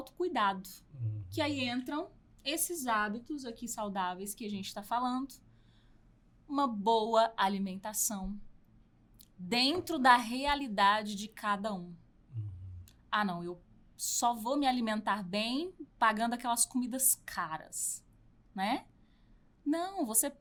que aí entram esses hábitos aqui saudáveis que a gente está falando. Uma boa alimentação dentro da realidade de cada um. Ah, não, eu só vou me alimentar bem pagando aquelas comidas caras, né? Não, você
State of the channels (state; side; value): identical; both; correlation 1.00